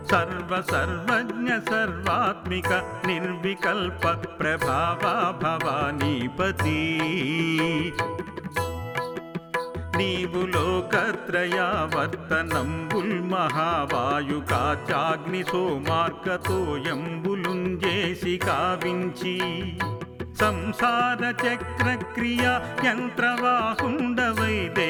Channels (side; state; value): both; identical; correlation 1.00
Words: సర్వజ్ఞ సర్వాత్మిక నిర్వికల్ప ప్రభావా భవానీపతి నీవు లోకత్రయావర్తనంబుల్ మహావాయుకాచాగ్ని సోమార్కతోయంబులుంజేసి కావించి సంసార చక్ర క్రియా యంత్రవాహుండవై